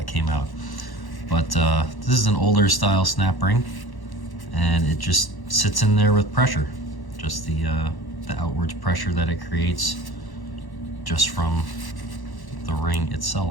came out. But this is an older style snap ring, and it just sits in there with pressure. Just the outwards pressure that it creates just from the ring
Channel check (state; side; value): late; right; 1.1 ms